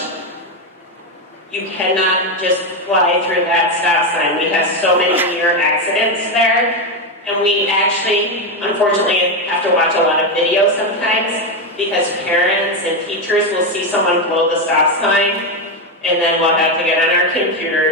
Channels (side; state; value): both; normal; correlation 0.09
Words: you cannot just fly through that stop sign. We have so many near accidents there, and we actually, unfortunately, have to watch a lot of videos sometimes because parents and teachers will see someone blow the stop sign, and then we'll have to get on our